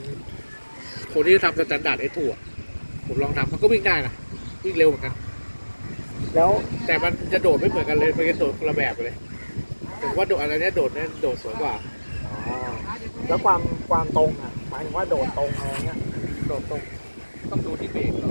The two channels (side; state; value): both; inverted; correlation -1.00